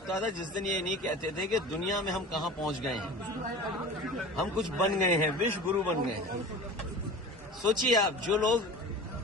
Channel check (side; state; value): both; normal; correlation 0.36